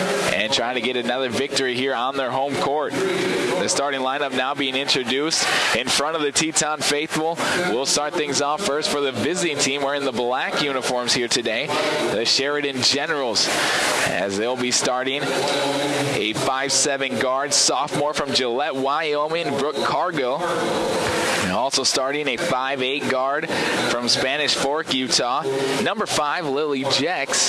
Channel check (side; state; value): both; identical; correlation 1.00